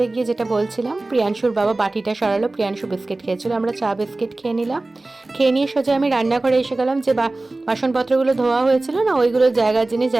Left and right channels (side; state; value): left; quieter; 3.0 dB